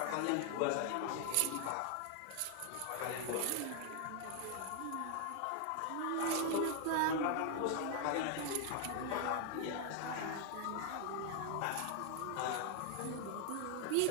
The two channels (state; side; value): different; both; correlation 0.00